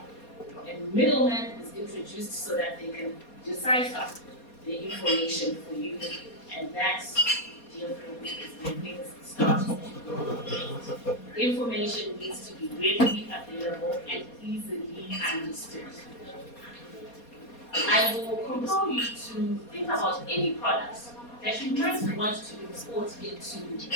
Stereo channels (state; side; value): late; right; 4.2 ms